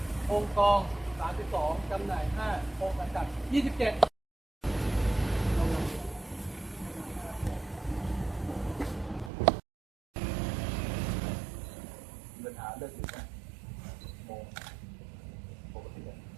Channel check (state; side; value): drops out; left; at 9.3 s